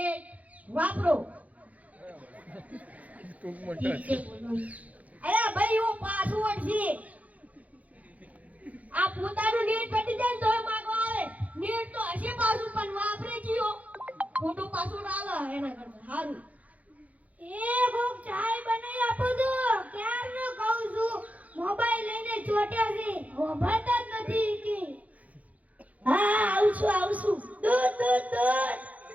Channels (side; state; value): left; late; 0.071 ms